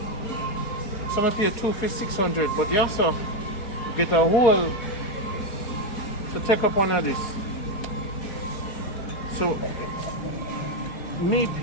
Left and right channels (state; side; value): late; right; 4.8 ms